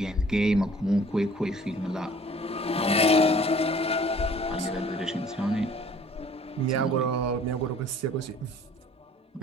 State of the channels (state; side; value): normal; both; correlation 0.53